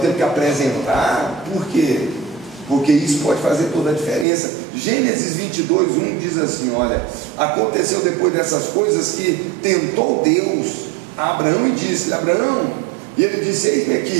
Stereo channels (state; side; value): drops out; left; at 4.2 s